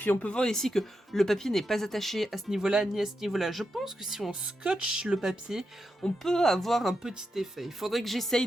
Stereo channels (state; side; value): normal; both; correlation 0.86